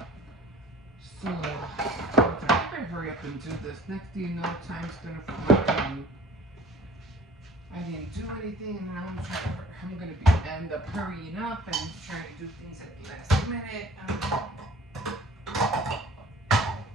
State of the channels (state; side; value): normal; both; correlation 0.50